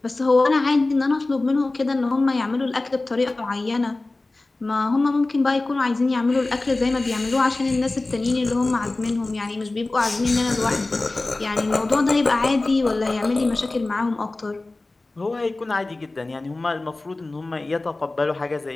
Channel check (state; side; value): quieter; right; 3.1 dB